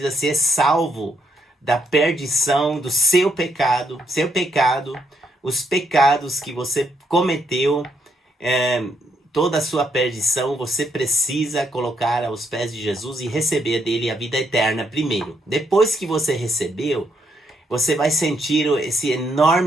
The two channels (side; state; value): both; normal; correlation 0.75